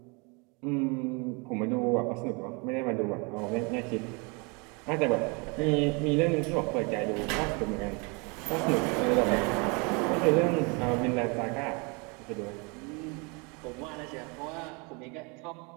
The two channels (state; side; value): quieter; left; 30.9 dB